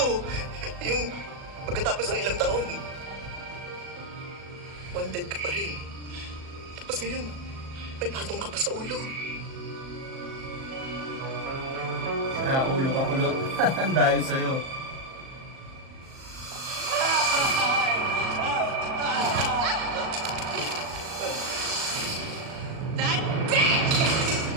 Yung pagkatapos ng ilang taon, wanted ka pa rin. Tapos ngayon, may patong ka pa sa ulo. Sira ulo ka pulot. Dahil sa'yo. That bitch!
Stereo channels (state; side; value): late; left; 38 ms